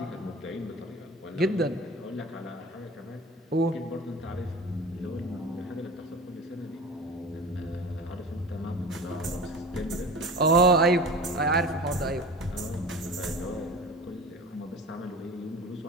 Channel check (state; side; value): normal; both; correlation 0.36